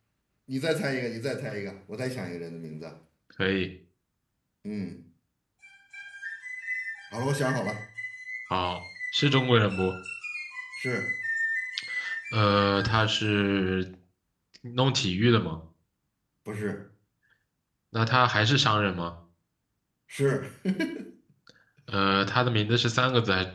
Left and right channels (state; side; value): identical; both; correlation 1.00